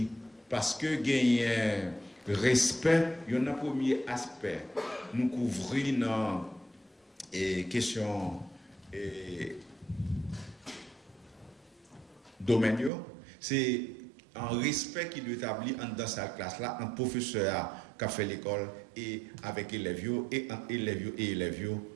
parce que gagne respect, il y a un premier aspect. Nous couvrons dans question domaine, c'est un respect qui doit établir dans cette classe-là, un professeur qui a fait l'école et avec élèves et entre élèves et élèves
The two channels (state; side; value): drops out; left; at 12.9 s